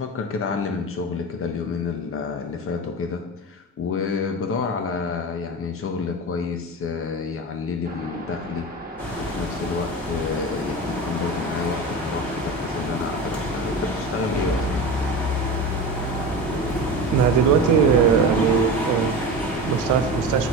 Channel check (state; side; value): normal; both; correlation 0.28